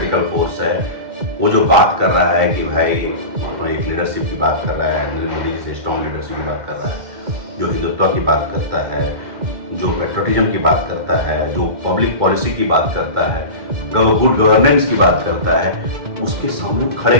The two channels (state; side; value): late; left; 2.1 ms